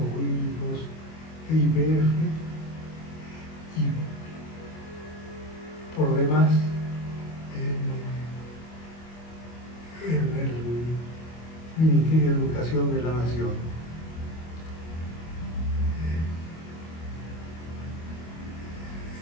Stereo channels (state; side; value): late; right; 25 ms